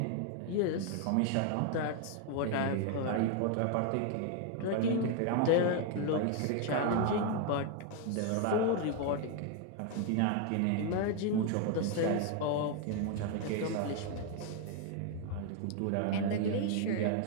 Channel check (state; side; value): different; both; correlation 0.01